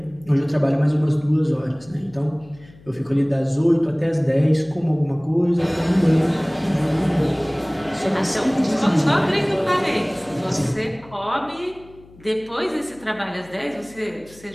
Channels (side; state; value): left; noise; hum, 24 dB below the sound